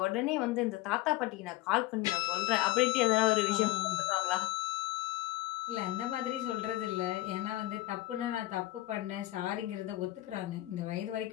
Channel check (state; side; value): quieter; right; 17.0 dB